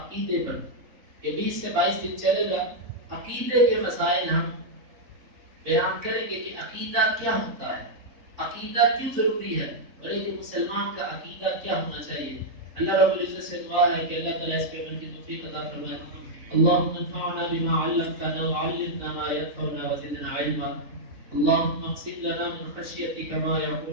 عقیدے پر. یہ 20 سے 22 دن چلے گا. عقیدے کے مسائل ہم بیان کریں گے کہ عقیدہ کیا ہوتا ہے، عقیدہ کیوں ضروری ہے، اور ایک مسلمان کا عقیدہ کیا ہونا چاہیے. اللہ رب العزت سے دعا ہے کہ اللہ تعالیٰ اس پہ عمل کی توفیق عطا فرمائے. اللهم انفعنا بما علمتنا وعلمنا ما ينفعنا وزدنا علما. اللهم اقسم لنا من خشيتك ما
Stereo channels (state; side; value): late; left; 3.8 ms